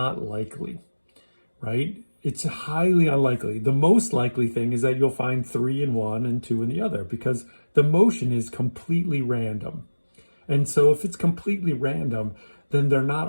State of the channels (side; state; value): both; inverted; correlation -1.00